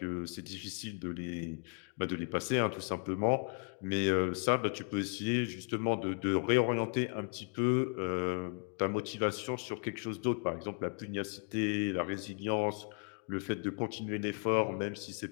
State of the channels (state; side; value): quieter; right; 38.9 dB